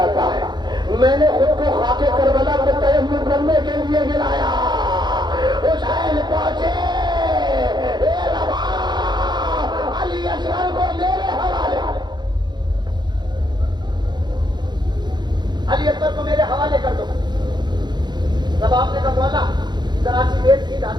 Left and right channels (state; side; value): late; left; 0.21 ms